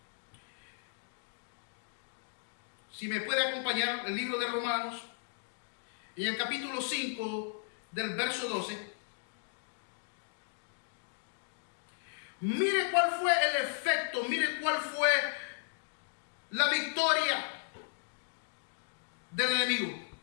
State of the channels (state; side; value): silent; right; digital silence